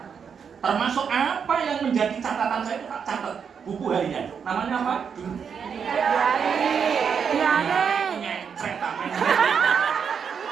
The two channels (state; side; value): quieter; left; 6.8 dB